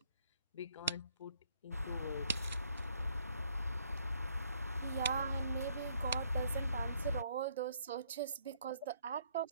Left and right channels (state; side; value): inverted; both; correlation -0.68